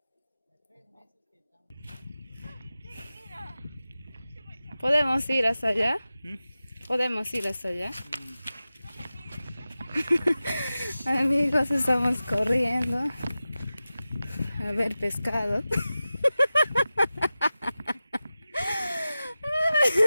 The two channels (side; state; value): both; inverted; correlation -0.95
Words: en 3 meses que estamos... ¿Podemos ir hasta allá? ¿Podemos ir hasta allá? Amigos, estamos corriendo a ver pescado.